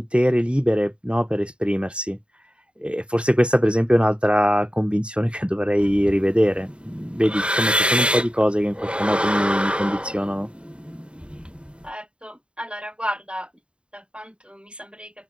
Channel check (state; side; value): late; left; 0.055 ms